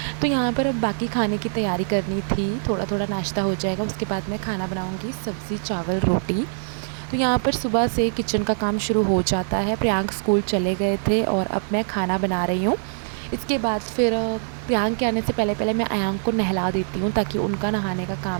तो यहाँ पर अब बाकी खाने की तैयारी करनी थी, थोड़ा थोड़ा नाश्ता हो जाएगा, उसके बाद मैं खाना बनाऊँगी, सब्ज़ी चावल रोटी। तो यहाँ पर सुबह से किचन का काम शुरू हो जाता है। प्रियांक स्कूल चले गए थे और अब मैं खाना बना रही हूँ। इसके बाद फिर प्रियांक के आने से पहले पहले मैं अयांक को नहला देती हूँ, ताकि उनका नहाने का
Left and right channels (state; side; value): silent; left; 63 dB below the other